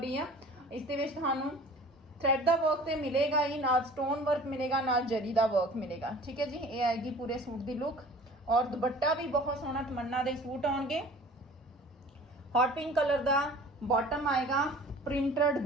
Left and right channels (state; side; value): normal; both; correlation 0.45